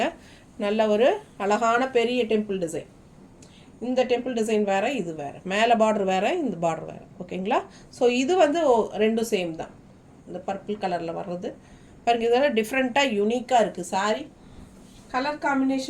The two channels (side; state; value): both; identical; correlation 1.00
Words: நல்ல ஒரு அழகான பெரிய டெம்பிள் டிசைன். இந்த டெம்பிள் டிசைன் வேறு, இது வேறு. மேலே பார்டர் வேறு, இந்த பார்டர் வேறு. ஓகேங்களா, ஸோ இது வந்து ரெண்டும் சேம் தான். இந்த பர்பிள் கலரில் வர்றது பாருங்கள், இதெல்லாம் டிஃப்ரெண்ட்டாக யூனிக்காக இருக்குது saree. கலர்